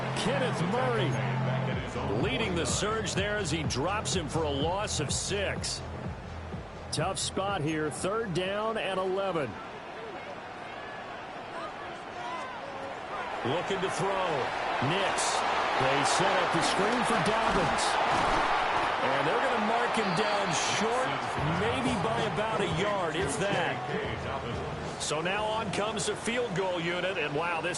Kenneth Murray leading the surge there as he drops him for a loss of 6. Tough spot here. 3rd down and 11. Looking to throw. Nix. They set up the screen for Dobbins. And they're going to mark him down short, maybe by about a yard, if that. So now on comes the field goal unit, and wow,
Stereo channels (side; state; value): both; identical; correlation 1.00